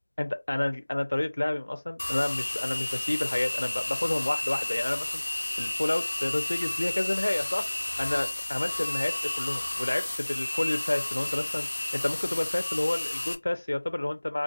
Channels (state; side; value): inverted; both; correlation -1.00